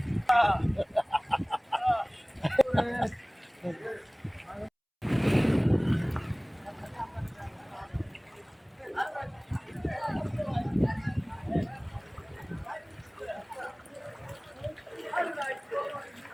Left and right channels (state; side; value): identical; both; correlation 1.00